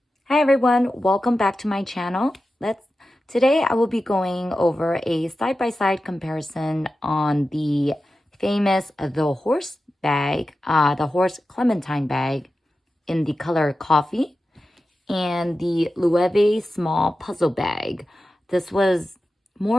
Hi everyone, welcome back to my channel. Today I will be going over a side-by-side comparison on the famous the Horse bag, the Horse Clementine bag in the color coffee, and the Loewe Small Puzzle bag. This was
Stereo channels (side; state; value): both; normal; correlation 0.93